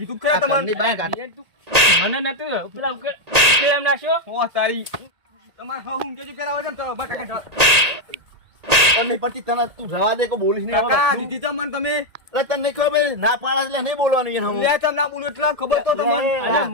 ખરા આ ઘરની તમને બાને કાઢ મને નતું પેલા ઉકેલ નાખ્યો ઓ તારી તમાર હા હું કેજી પેલા વજન તો બસ કાકા પણ નહીં પડતી તને તું જવા દે કો બોલીશ નહીં કાકા આવે દીધી તો મને તમે એટલે તને નહીં ખબર પડી? ના પાડા એટલે નહીં બોલવાનું એને હમું. લે તમ ના બોલું એટલે ખબર તો તમને અરે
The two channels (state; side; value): late; left; 1.8 ms